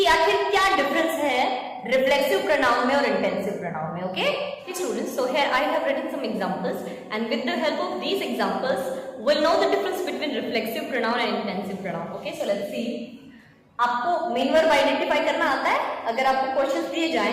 आखिर क्या डिफरेंस है रिफ्लेक्सिव प्रोनाउन में और इंटेंसिव प्रोनाउन में। Okay students, so here I have written some examples and with the help of these examples we'll know the difference between reflexive pronoun and intensive pronoun. Okay, so let's see. आपको main verb identify करना आता है? अगर आपको questions दिए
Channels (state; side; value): identical; both; correlation 1.00